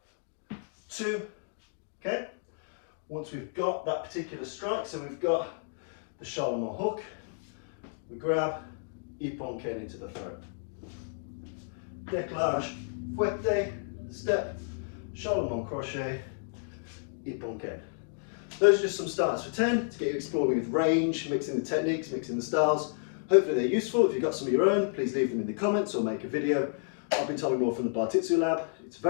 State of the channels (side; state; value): right; silent; digital silence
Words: 2, okay? Once we've got that particular strike, so we've got the Charlemagne hook, we grab, ippon ken into the throat. Décalage, fouette, step, Charlemagne crochet, ippon ken. Those are just some starts for 10 to get you exploring with range, mixing the techniques, mixing the styles. Hopefully they're useful. If you've got some of your own, please leave them in the comments or make a video. I've been Tommy Moore from the Bartitsu Lab. It's a